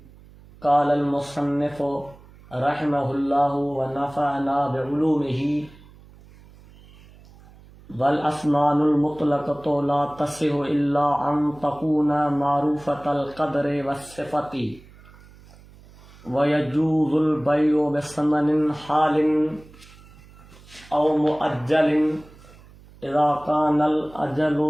क़ालल मुसन्निफ़ रहमहुल्लाहु व नफ़अना बिउलूमिही वल अस्मानुल मुतलक़तु ला तसिहु इल्ला अन तकूना मारूफ़तल क़द्रि वस्सिफ़ति व यजूज़ुल बैउ बिसमनिन हालिन औ मुअज्जलिन इज़ा कानल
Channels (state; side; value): noise; right; hum, 23 dB below the sound